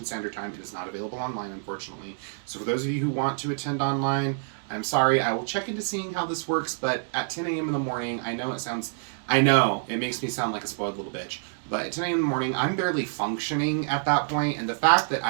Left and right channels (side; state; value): left; silent; digital silence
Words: Standard Time. It is not available online, unfortunately. So for those of you who want to attend online, I'm sorry. I will check into seeing how this works, but at 10 a.m. in the morning, I know it makes me sound like a spoiled little bitch, but at 10 a.m. in the morning, I'm barely functioning at that point, and the fact that